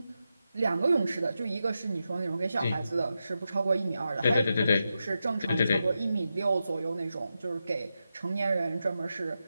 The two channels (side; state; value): both; inverted; correlation -0.88